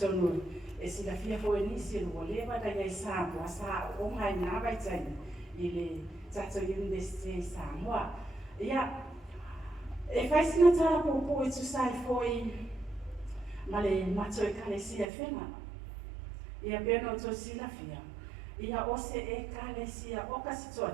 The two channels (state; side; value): drops out; left; at 15.1 s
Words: know. It's the fearful initial whatever that I saw was oh my navigating. That's a university somewhere. Yeah, if I see not a popo to side for Malay Mato Calesia Fena. Yeah, Beno to Silafia. Yeah, also a Calesia Ocas to